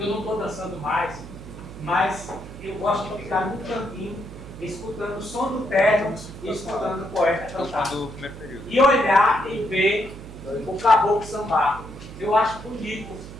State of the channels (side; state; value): right; noise; hum, 14 dB below the sound